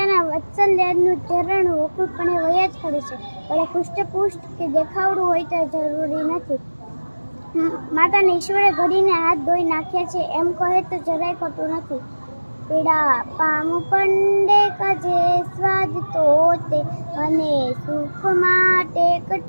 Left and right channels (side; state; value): both; inverted; correlation -1.00